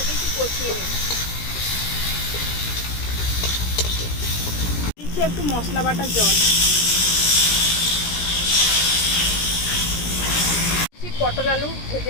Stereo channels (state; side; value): late; right; 17 ms